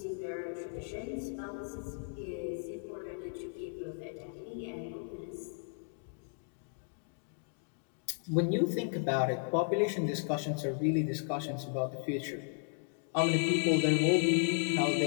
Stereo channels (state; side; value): silent; right; digital silence